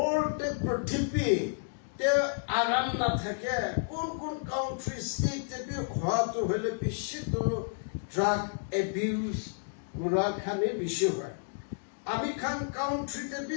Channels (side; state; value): right; silent; digital silence